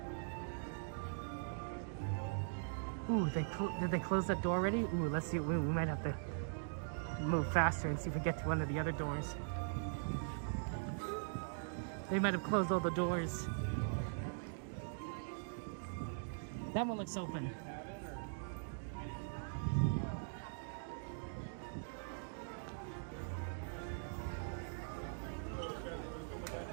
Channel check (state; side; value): silent; left; digital silence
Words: Ooh, did they close that door already? Ooh, let's see. We might have to move faster and see if we get to one of the other doors. They might have closed all the doors. That one looks open.